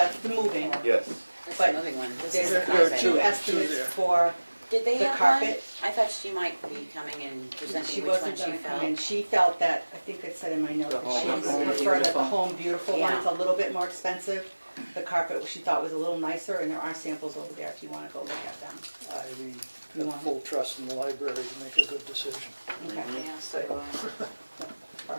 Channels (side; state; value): both; inverted; correlation -1.00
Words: moving. Yes. That's But the moving one. This There's is the There are carpet. two two estimates there. for, Did they the have one? carpet. I thought she might be coming and she presenting which one wasn't she gonna come felt. in, she felt that, I think it said in my note, The that she Home preferred that the Home Beautiful one, Yeah. it's a little bit more expensive. The carpet she thought was a little nicer, and there are samples over there if you wanna go look at them. I You have want- full trust in the library to make a good decision. Okay, Yeah, so